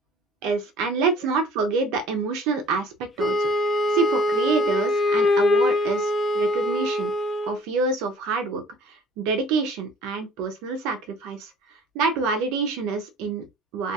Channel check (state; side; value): normal; both; correlation 0.51